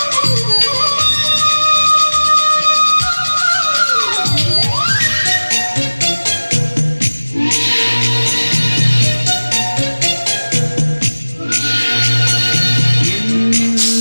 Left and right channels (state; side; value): inverted; both; correlation -1.00